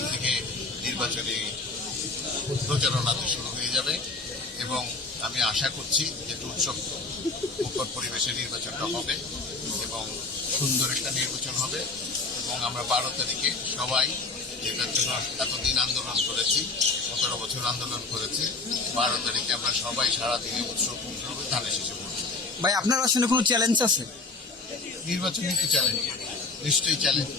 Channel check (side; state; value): right; quieter; 3.7 dB